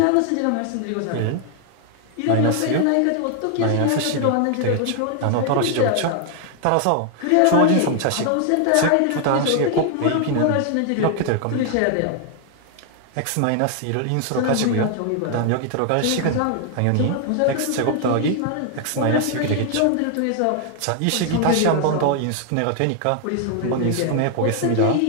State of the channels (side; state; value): both; different; correlation 0.00